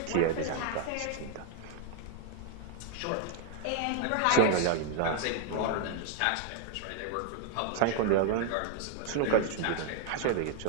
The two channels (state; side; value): different; both; correlation 0.00